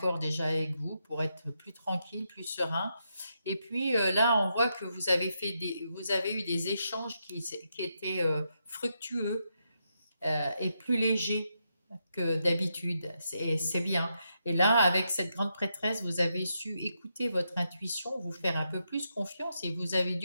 déjà avec vous pour être plus tranquille, plus serein. Et puis là, on voit que vous avez eu des échanges qui étaient fructueux et plus légers que d'habitude. C'est bien. Et là, avec cette grande prêtresse, vous avez su écouter votre intuition, vous faire un peu plus confiance et vous avez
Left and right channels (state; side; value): inverted; both; correlation -0.82